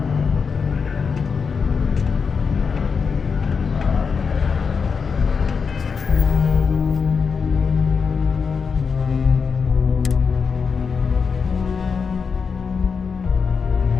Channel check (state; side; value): quieter; right; 5.6 dB